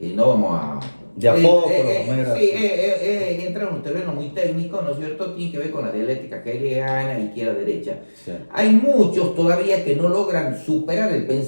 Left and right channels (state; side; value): inverted; both; correlation -1.00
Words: vamos a De a poco, lo vamos a ir sí, así. entra en un terreno muy técnico, ¿no es cierto? Tiene que ver con la dialéctica hegeliana, izquierda-derecha. Sí, Hay muchos todavía que no logran superar el